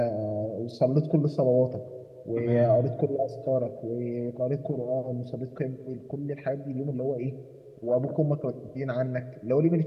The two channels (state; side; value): identical; both; correlation 1.00